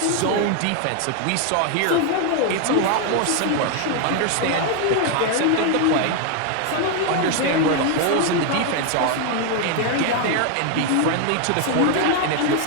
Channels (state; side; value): different; both; correlation 0.01